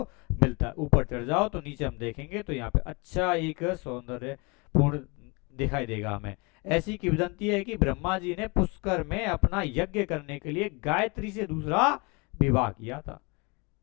मिलता है। ऊपर चढ़ जाओ तो नीचे हम देखेंगे तो यहाँ पे अच्छा एक सौंदर्य पूर्ण दिखाई देगा हमें। ऐसी किंवदंती है कि ब्रह्मा जी ने पुष्कर में अपना यज्ञ करने के लिए गायत्री से दूसरा विवाह किया था।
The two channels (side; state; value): right; quieter; 28.6 dB